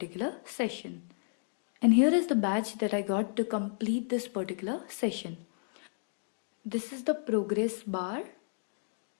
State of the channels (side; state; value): right; silent; digital silence